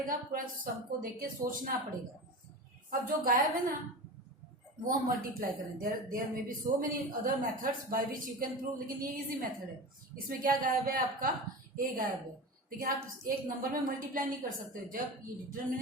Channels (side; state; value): both; normal; correlation 0.28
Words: पूरा सबको देख के सोचना पड़ेगा. अब जो गायब है ना, वो हम मल्टीप्लाई करें. There may be so many other methods by which you can prove, लेकिन ये इजी मेथड है. इसमें क्या गायब है? आपका ए गायब है. लेकिन आप एक नंबर में मल्टीप्लाई नहीं कर सकते. जब ये